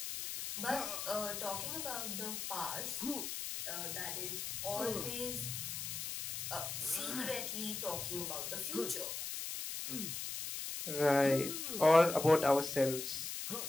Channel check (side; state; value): left; noise; hiss, 5 dB below the sound